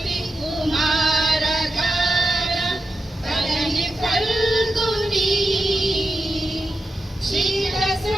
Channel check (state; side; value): normal; both; correlation 0.89